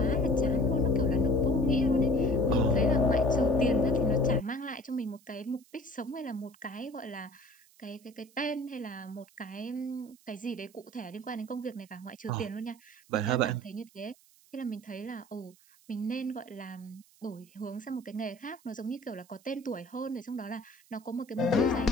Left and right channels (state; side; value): noise; right; hiss, 28 dB below the sound